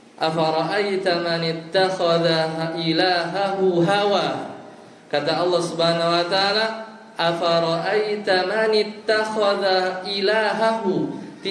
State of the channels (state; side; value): identical; both; correlation 1.00